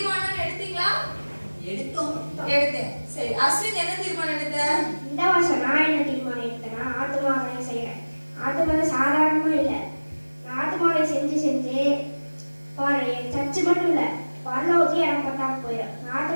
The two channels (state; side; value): inverted; both; correlation -1.00